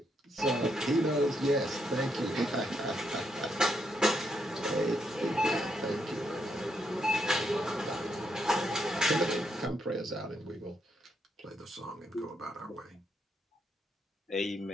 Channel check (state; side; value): normal; both; correlation 0.78